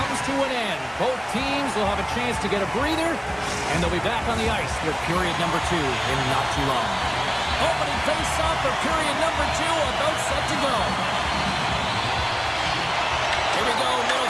to an end. Both teams will have a chance to get a breather, and they'll be back on the ice with period number 2 in not too long. Opening face-off for period number 2, about set to go. Here we go,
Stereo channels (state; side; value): identical; both; correlation 1.00